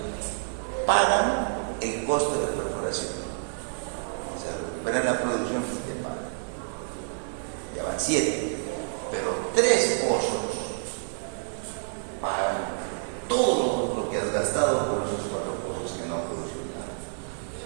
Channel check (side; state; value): left; silent; digital silence